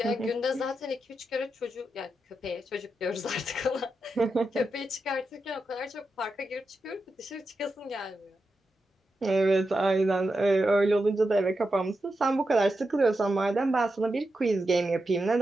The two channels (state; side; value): normal; both; correlation 0.88